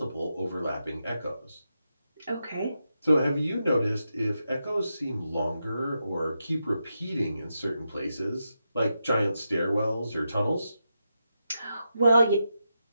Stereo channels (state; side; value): inverted; both; correlation -0.87